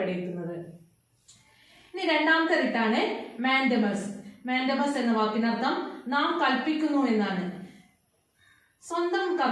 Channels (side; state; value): both; identical; correlation 1.00